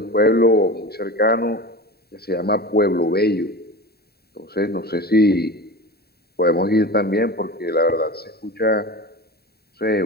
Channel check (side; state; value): right; late; 0.46 ms